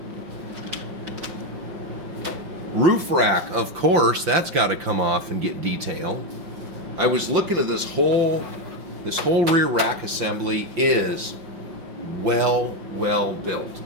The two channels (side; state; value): left; late; 5.9 ms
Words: Roof rack, of course, that's got to come off and get detailed. I was looking at this whole rear rack assembly is well built.